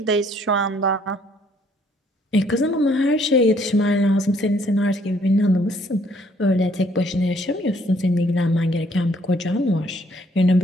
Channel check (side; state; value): both; normal; correlation 0.65